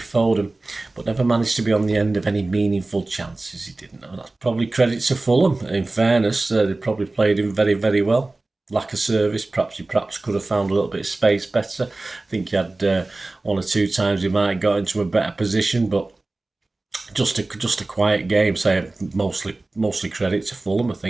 Foden, but never managed to be on the end of any meaningful chances. He didn't. That's probably credit to Fulham. In fairness, they probably played him very, very well. Lack of service. He perhaps could have found a little bit of space better. I think he had 1 or 2 times he might have got into a better position, but just a quiet game. So mostly credit to Fulham, I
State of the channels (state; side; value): quieter; left; 3.1 dB